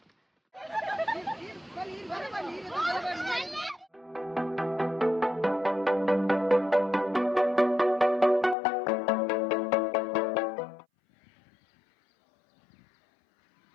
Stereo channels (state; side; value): drops out; right; at 8.6 s